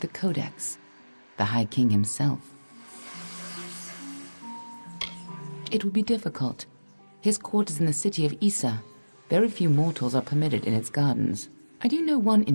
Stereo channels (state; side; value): inverted; both; correlation -1.00